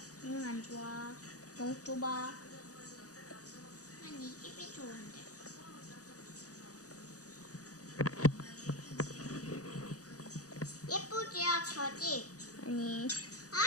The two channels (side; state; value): right; late; 0.66 ms